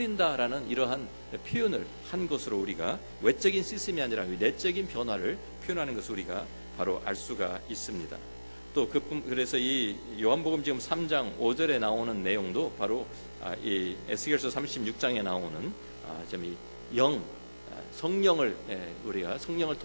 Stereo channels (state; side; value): inverted; both; correlation -1.00